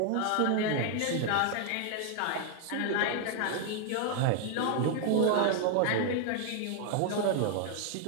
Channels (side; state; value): both; different; correlation 0.00